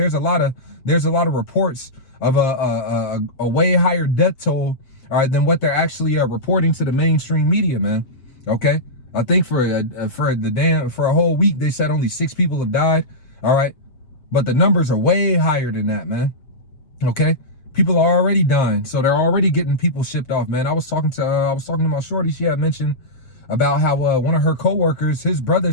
a lot of reports of a way higher death toll, all right, than what they're actually reporting to the mainstream media, man. Okay, I think for a whole week they said only 6 people have died, all right, but the numbers are way higher than that, man. Okay, people are already dying, so they're already getting people shipped off, man. I was talking to my shorty. She had mentioned about how one of her coworkers, his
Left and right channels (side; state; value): right; late; 7.6 ms